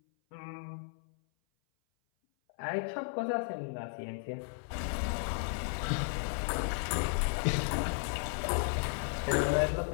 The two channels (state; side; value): silent; right; 55 dB below the other